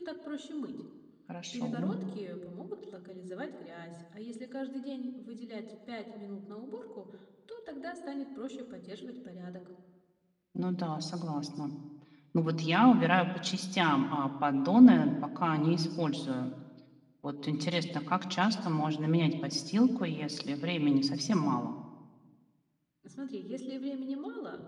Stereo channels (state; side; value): identical; both; correlation 1.00